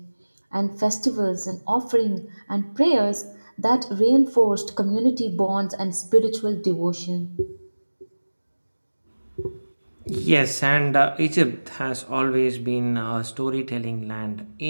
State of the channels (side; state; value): both; inverted; correlation -1.00